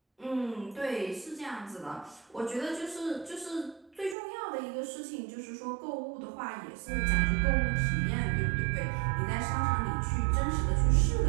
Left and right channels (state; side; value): drops out; left; at 4.2 s